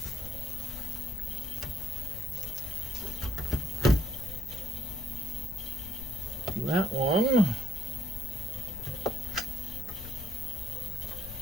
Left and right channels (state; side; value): noise; left; rumble, 12 dB below the sound